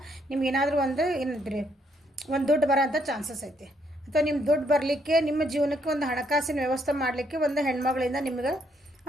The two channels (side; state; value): both; normal; correlation 0.72